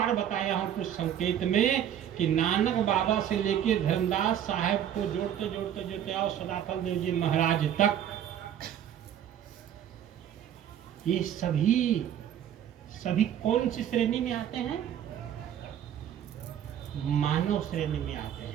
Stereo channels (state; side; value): quieter; left; 10.0 dB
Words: बताया हूं कुछ संकेत में, कि नानक बाबा से लेके धर्मदास साहब को जोड़ते जोड़ते जोड़ते आओ सदाफल देव जी महाराज तक, ये सभी कौन सी श्रेणी में आते हैं? मानव श्रेणी में आते हैं।